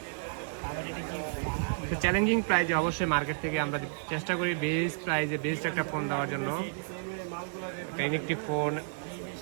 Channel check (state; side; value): silent; left; digital silence